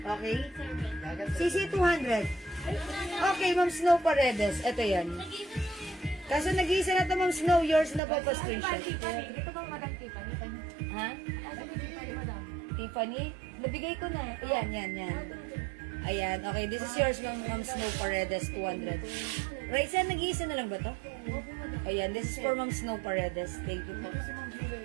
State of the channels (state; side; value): drops out; left; at 8.0 s